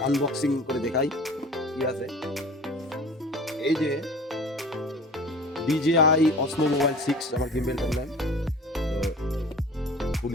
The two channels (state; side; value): normal; both; correlation 0.42